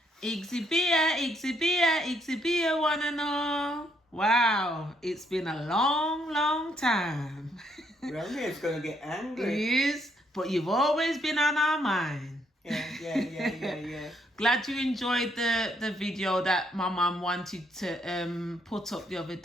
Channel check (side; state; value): both; normal; correlation 0.72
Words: Igsy wanna know. Wow, it's been a long, long time. Romeo's gonna get It angry. is, but you've always been on our mind. Yeah. Glad you enjoyed the video that my mum wanted to put up the other